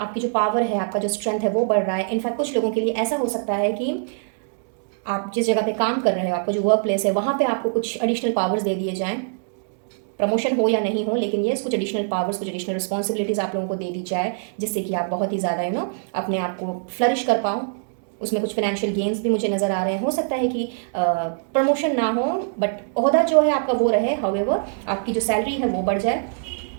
जो पावर है, आपका जो स्ट्रेंथ है वो बढ़ रहा है। इनफैक्ट कुछ लोगों के लिए ऐसा हो सकता है कि आप जिस जगह पे काम कर रहे हो, आपका जो वर्क प्लेस है, वहाँ पे आपको कुछ एडिशनल पावर्स दे दिए जाएँ, प्रमोशन हो या नहीं हो, लेकिन ये कुछ एडिशनल पावर्स, कुछ एडिशनल रिस्पॉन्सिबिलिटीज़ आप लोगों को दे दी जाए, जिससे कि आप बहुत ही ज़्यादा अपने आप को फ्लरिश कर पाओ। उसमें कुछ फाइनेंशियल गेन्स भी मुझे नज़र आ रहे हैं। हो सकता है कि प्रमोशन ना हो, बट ओहदा जो है आपका वो रहे। हाउएवर आपकी जो सैलरी है वो बढ़ जाए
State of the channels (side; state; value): left; silent; digital silence